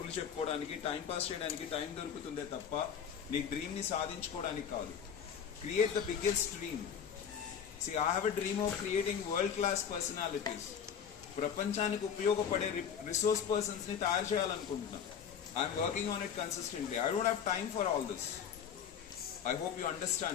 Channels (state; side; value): quieter; right; 7.9 dB